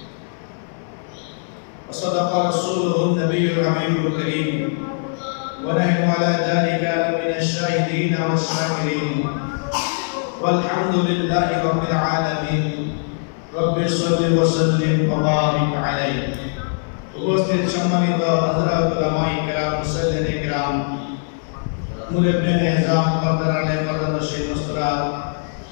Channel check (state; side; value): silent; right; digital silence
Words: وصدق رسوله النبي الحبيب الكريم ونحن على ذلك من الشاهدين والشاكرين والحمد لله رب العالمين رب صل وسلم وبارك عليه উপস্থিত সম্মানিত হযরত উলামায়ে কেরাম মুসল্লিনে কেরাম মুরব্বিয়ান নিজাম কদরানে কদরশী মুসরাত